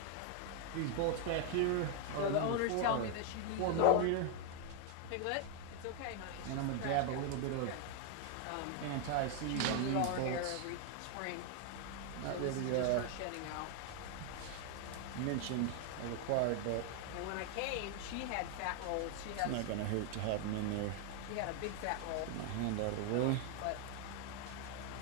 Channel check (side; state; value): both; different; correlation 0.00